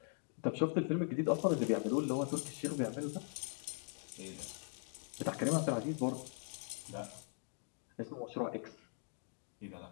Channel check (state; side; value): silent; right; 51 dB below the other